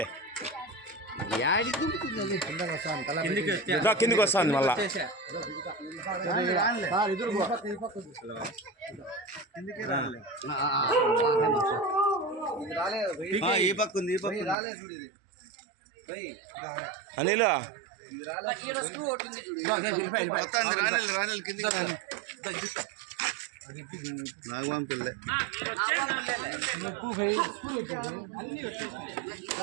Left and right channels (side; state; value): left; drops out; at 14.6 s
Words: కిందికి వస్తాను మళ్ళా. అనిల్ నాగవంపిల్లే